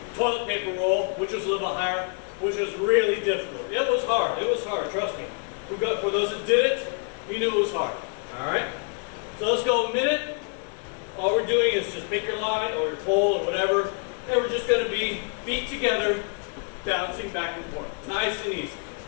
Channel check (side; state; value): right; quieter; 37.6 dB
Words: paper roll, which was a little higher, which was really difficult. It was hard, trust me. For those that did it, you knew it was hard. All right? So let's go a minute. All we're doing is just pick your line or your pole or whatever, and we're just gonna be feet together, bouncing back and forth. Nice and easy.